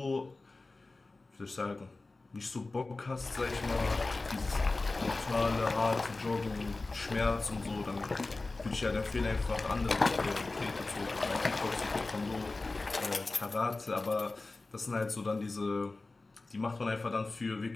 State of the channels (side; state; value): right; quieter; 3.4 dB